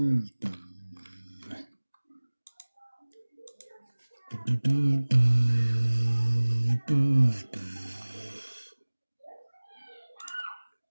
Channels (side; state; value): both; inverted; correlation -1.00